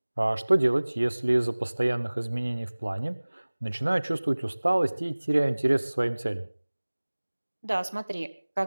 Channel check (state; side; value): inverted; both; correlation -1.00